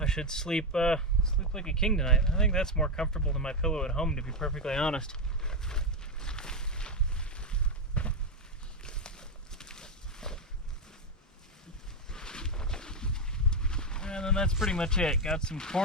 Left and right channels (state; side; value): normal; both; correlation 0.07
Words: should sleep like a king tonight. I think that's more comfortable than my pillow at home, to be perfectly honest. that's pretty much it. Got some